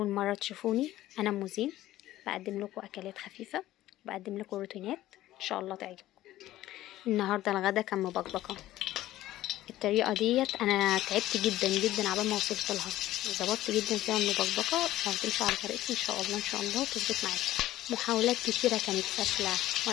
مرة تشوفوني، أنا موزين، بقدم لكم أكلات خفيفة، بقدم لكم روتينات إن شاء الله تعجبكم. النهاردة الغدا كان مبكبكة. الطريقة ديت أنا تعبت جدا جدا عبال ما وصلت لها، ظبطت جدا فيها المبكبكة. لو تمشوا على طريقتي إن شاء الله تظبط معاكم. محاولات كتيرة كانت فاشلة،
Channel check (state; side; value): quieter; right; 14.9 dB